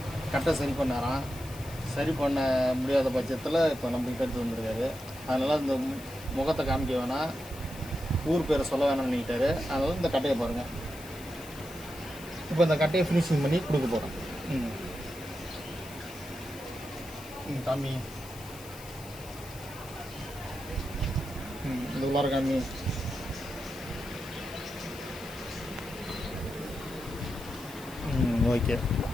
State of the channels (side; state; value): left; noise; hiss, 17 dB below the sound